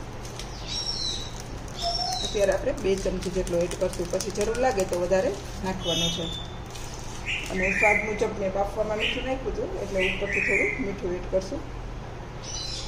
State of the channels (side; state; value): both; identical; correlation 1.00